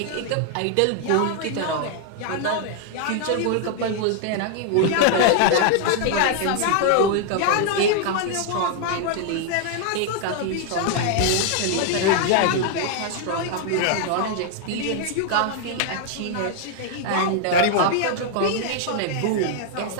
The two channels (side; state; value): both; different; correlation 0.00